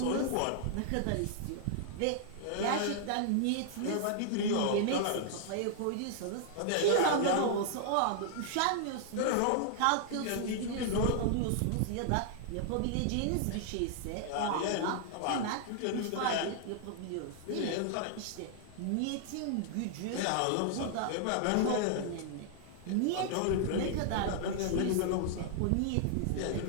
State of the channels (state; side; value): different; both; correlation -0.01